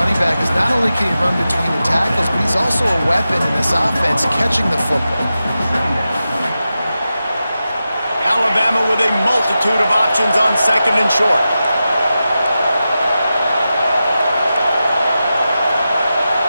back is not only can he run between the tackles, but he's also a weapon in this offense catching the football. Alabama with a multitude of options on 2nd and short.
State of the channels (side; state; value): both; inverted; correlation -0.92